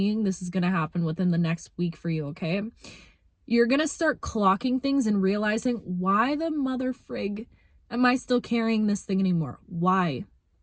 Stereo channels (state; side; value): identical; both; correlation 1.00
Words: this is going to happen within the next week for you, okay? You're going to start clocking things and realizing, why the mother frig am I still carrying this thing anymore? Why?